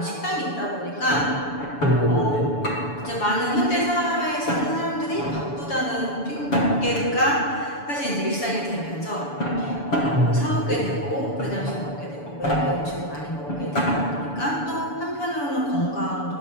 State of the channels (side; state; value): right; late; 7.0 ms